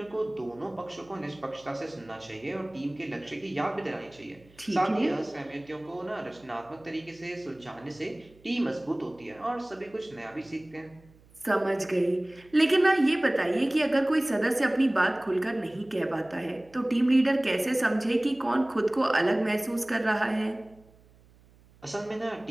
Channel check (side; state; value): right; noise; hum, 28 dB below the sound